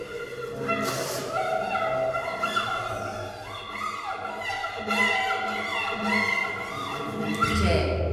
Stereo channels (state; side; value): identical; both; correlation 1.00